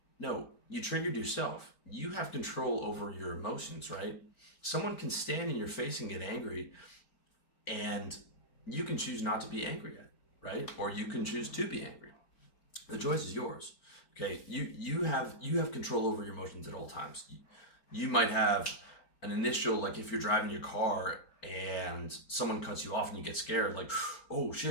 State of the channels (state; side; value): late; right; 4.4 ms